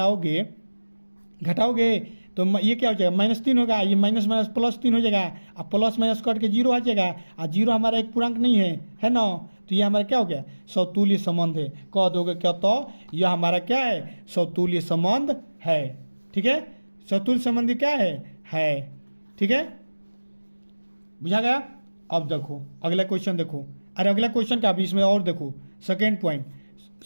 तो ये क्या हो जाएगा, -3 होगा, ये माइनस माइनस +3 हो जाएगा, अब प्लस माइनस कट के 0 आ जाएगा, और 0 हमारा एक पूर्णांक नहीं है ना। तो ये हमारा क्या हो गया, समतुल्य संबंध है। कह दोगे क्या, तो यह हमारा क्या है, समतुल्य संबंध है। ठीक है, समतुल्य संबंध क्या है। ठीक है, बुझा गया। अब देखो अगला क्वेश्चन देखो, अरे अगला क्वेश्चन का भी इसमें और देखो, सेकेंड पॉइंट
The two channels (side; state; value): both; inverted; correlation -1.00